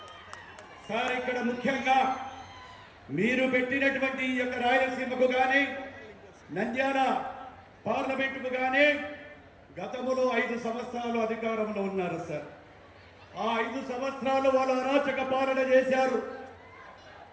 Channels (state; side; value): identical; both; correlation 1.00